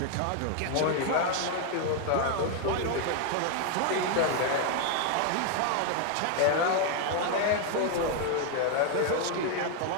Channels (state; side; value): different; both; correlation 0.00